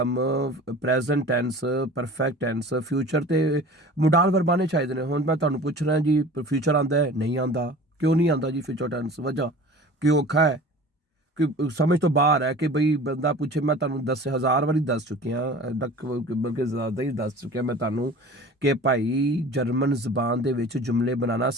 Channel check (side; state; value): both; normal; correlation 0.41